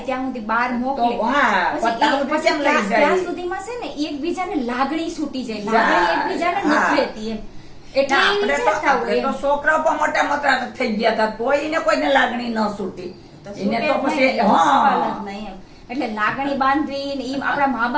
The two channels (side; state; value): both; identical; correlation 1.00